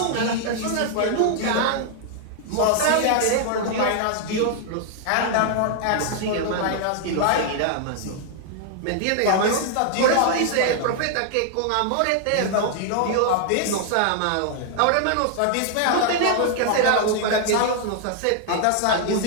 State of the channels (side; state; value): both; different; correlation 0.00